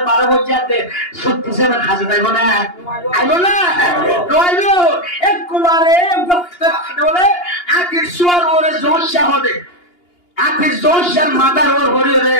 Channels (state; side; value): late; right; 2.8 ms